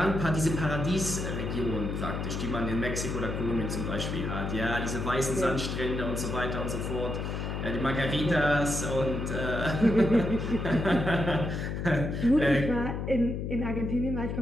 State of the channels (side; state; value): left; noise; hum, 3 dB below the sound